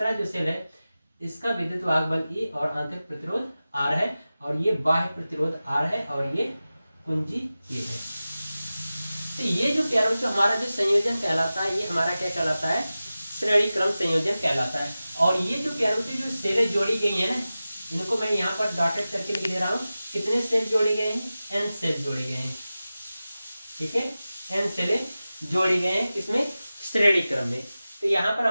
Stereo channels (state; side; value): inverted; both; correlation -0.95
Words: जो सेल है इसका विद्युत वाहक बल E और आंतरिक प्रतिरोध R है, और ये बाह्य प्रतिरोध R है, और ये कुंजी K है। तो ये जो प्यारे बच्चों हमारा जो संयोजन कहलाता है, ये हमारा क्या कहलाता है, श्रेणी क्रम संयोजन कहलाता है। और ये जो प्यारे बच्चों जो सेलें जोड़ी गई है ना, इनको मैं यहाँ पर डॉटेड करके लिख दे रहा हूँ। कितने सेल जोड़े गए हैं, N सेल जोड़े गए हैं, ठीक है, N सेलें जोड़े गए हैं किसमें, श्रेणी क्रम में। तो यहाँ पर